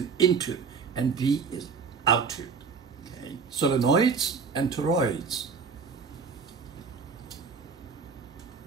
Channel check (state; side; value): quieter; left; 5.5 dB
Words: into, and B is out to. Okay. Solenoids and toroids.